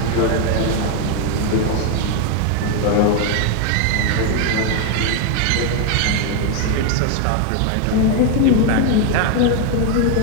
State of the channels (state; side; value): different; both; correlation 0.01